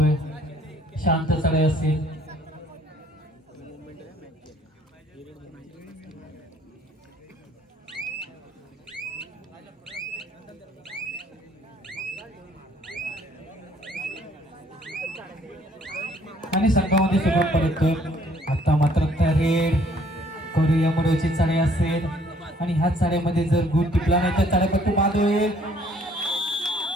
शांत चढाई असेल. आणि संघामध्ये सुरुवात परततोय. आता मात्र रेड करूया मरोची चढाई असेल आणि ह्या चढाईमध्ये जर गुण टिपला नाही तर चढाईपट्टू बाद होईल.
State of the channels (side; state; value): both; normal; correlation 0.61